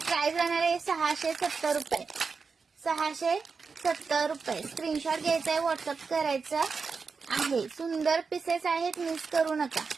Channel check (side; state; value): left; quieter; 5.0 dB